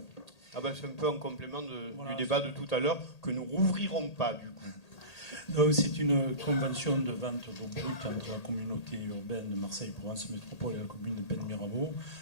Ah ben, c'est un peu en complément du débat de tout à l'heure que nous rouvrirons pas, du coup. C'est une convention de vente d'eau brute entre la communauté urbaine de Marseille-Provence Métropole et la commune de Pennes-Mirabeau.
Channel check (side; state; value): right; late; 1.8 ms